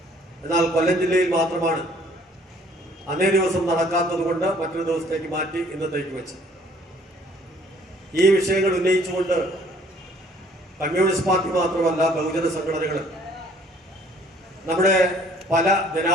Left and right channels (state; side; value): normal; both; correlation 0.58